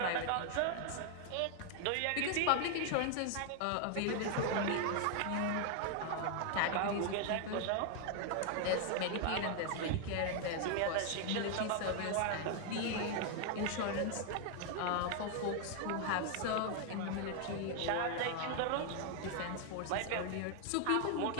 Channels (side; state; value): both; different; correlation 0.00